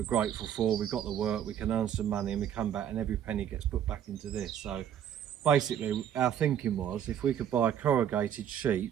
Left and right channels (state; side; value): quieter; left; 9.6 dB